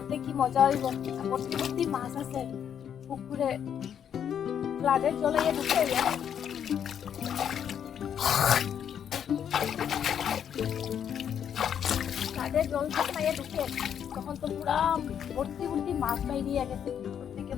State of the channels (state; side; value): quieter; right; 8.7 dB